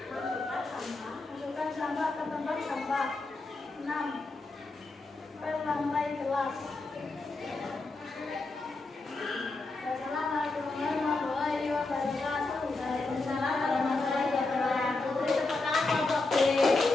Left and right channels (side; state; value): right; quieter; 3.4 dB